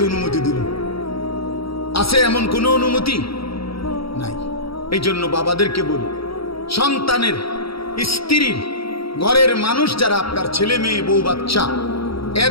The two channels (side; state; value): right; late; 0.75 ms